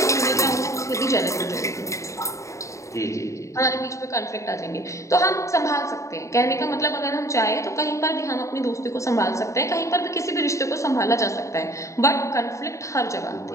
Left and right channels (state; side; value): late; right; 0.15 ms